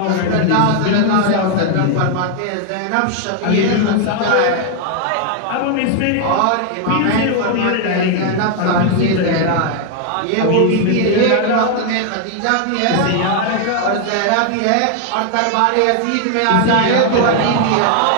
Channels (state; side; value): different; both; correlation 0.00